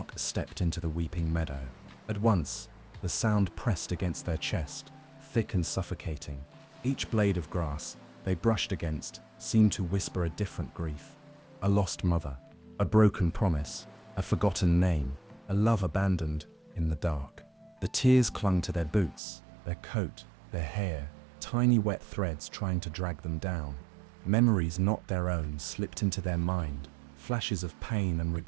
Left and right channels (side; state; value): left; drops out; at 19.2 s